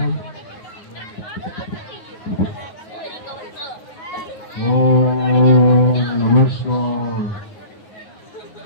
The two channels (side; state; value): right; late; 9.4 ms